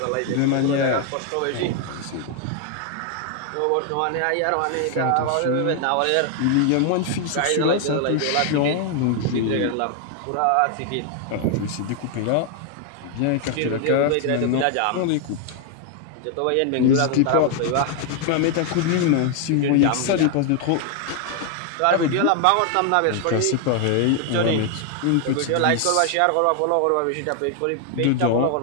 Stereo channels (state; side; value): different; both; correlation 0.00